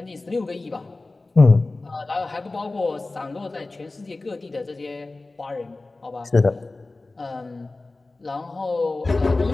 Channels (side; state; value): right; quieter; 3.2 dB